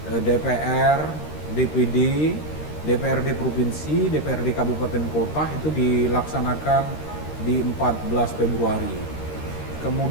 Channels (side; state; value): right; late; 13 ms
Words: DPR, DPD, DPRD provinsi, DPRD kabupaten kota itu dilaksanakan di 14 Februari.